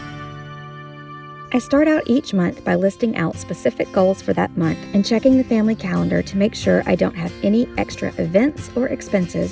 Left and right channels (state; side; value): identical; both; correlation 1.00